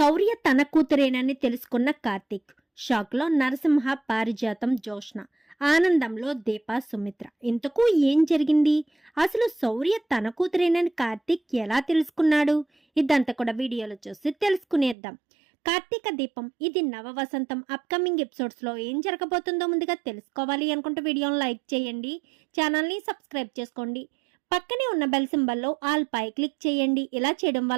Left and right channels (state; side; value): drops out; left; at 15.0 s